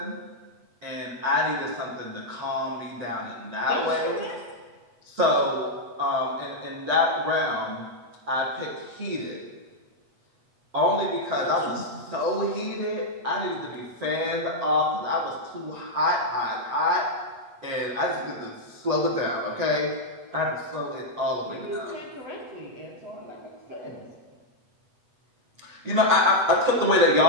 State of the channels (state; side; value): late; left; 8.2 ms